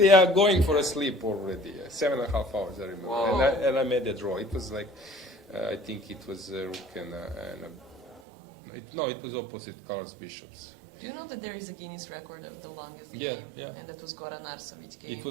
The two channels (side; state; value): left; drops out; at 8.2 s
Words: are going for a sleep already. 7.5 hours, I remember. Whoa. And I made a draw. It was like, I think it was rook and it was opposite colors bishops. Do you know that there is a Guinness record of the longest Yeah, game? yeah. And that was Goran Arsovic game. It